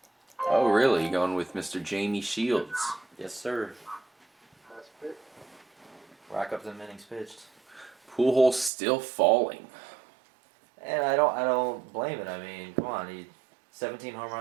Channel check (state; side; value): drops out; left; at 8.7 s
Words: Oh, really? You going with Mr. Jamie Shields? Yes, sir. Nice pick. Rack up the innings pitched. Pujols still falling. And I don't blame it. I mean, come on, he 17 home